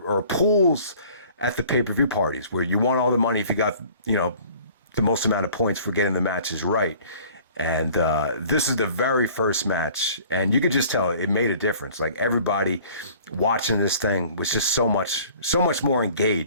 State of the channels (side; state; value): both; inverted; correlation -0.51